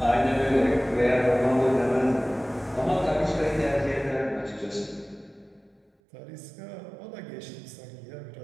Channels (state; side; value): drops out; left; at 5.9 s